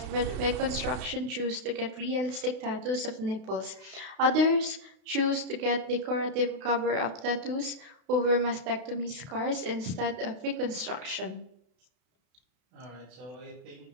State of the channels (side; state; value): left; late; 32 ms